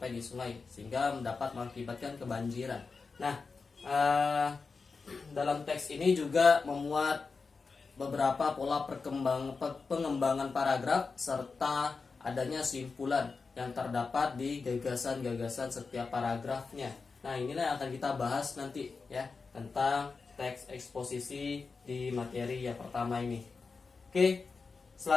di sungai sehingga dapat mengakibatkan kebanjiran. Nah, dalam teks ini juga memuat beberapa pola pengembangan paragraf serta adanya simpulan yang terdapat di gagasan-gagasan setiap paragrafnya. Nah, inilah yang akan kita bahas nanti ya, tentang teks eksposisi di materi yang pertama ini. Oke,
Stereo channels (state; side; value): quieter; right; 4.6 dB